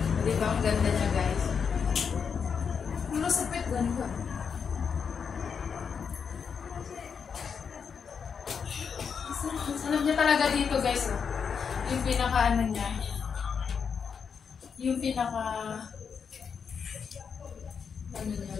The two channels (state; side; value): quieter; right; 6.4 dB